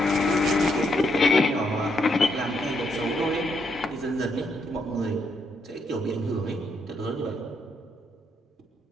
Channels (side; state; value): both; normal; correlation 0.76